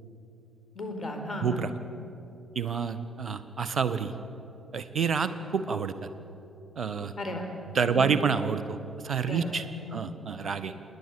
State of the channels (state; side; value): quieter; left; 4.9 dB